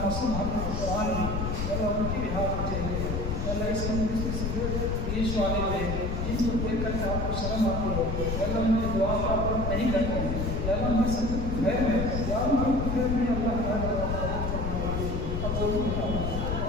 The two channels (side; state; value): left; noise; rumble, 1 dB below the sound